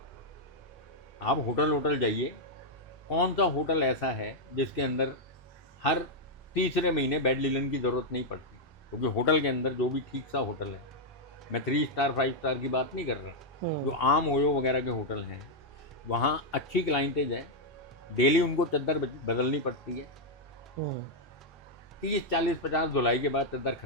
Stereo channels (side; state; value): both; normal; correlation -0.02